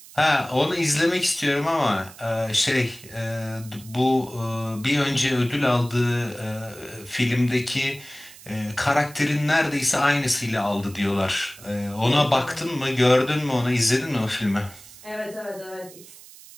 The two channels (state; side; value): noise; right; hiss, 20 dB below the sound